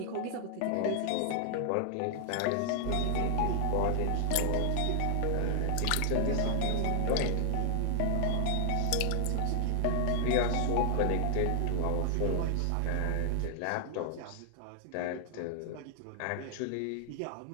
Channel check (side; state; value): both; different; correlation 0.00